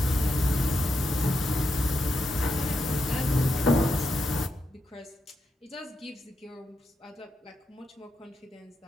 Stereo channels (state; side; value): normal; both; correlation 0.85